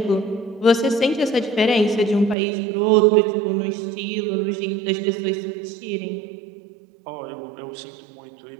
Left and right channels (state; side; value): drops out; left; at 2.4 s